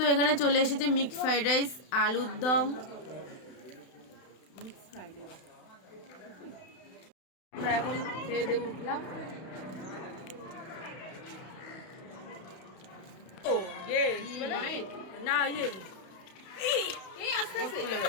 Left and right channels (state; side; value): late; right; 32 ms